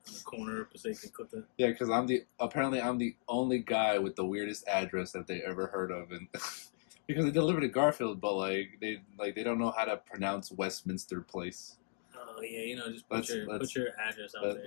the corner of Passaic and Clifton. Yeah, because I'm the only guy with the weirdest address that they ever heard of, and because they delivered to Garfield, but they don't know how to pronounce Westminster Place. Oh yeah, just put your address out there.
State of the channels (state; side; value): silent; right; digital silence